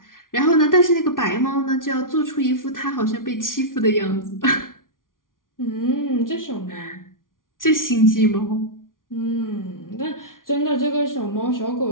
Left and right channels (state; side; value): late; right; 0.89 ms